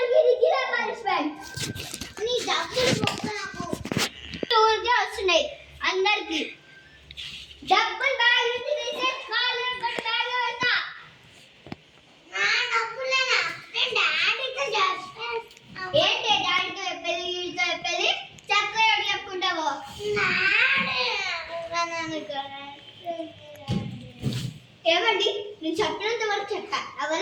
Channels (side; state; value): both; identical; correlation 1.00